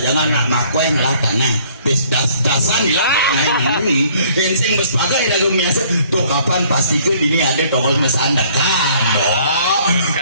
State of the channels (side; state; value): both; inverted; correlation -0.59